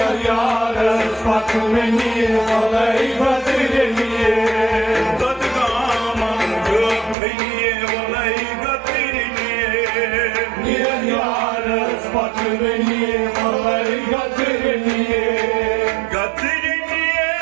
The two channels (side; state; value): left; drops out; at 7.2 s